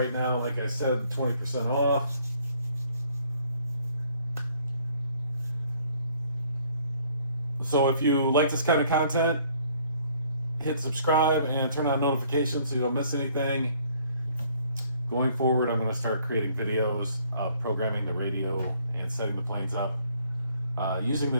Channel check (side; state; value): both; inverted; correlation -0.62